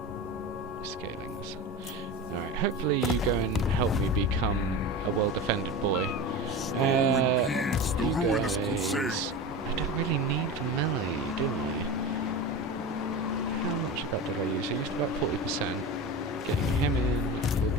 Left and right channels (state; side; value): normal; both; correlation 0.27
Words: Scaling this. Alright, hopefully you go and help me become a well-defended boy. You guys... I don't really need the melee, do I? How much of that did I use? I used about 40%. Getting him in will